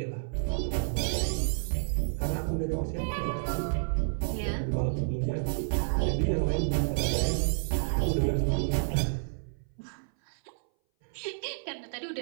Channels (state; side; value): silent; left; 58 dB below the other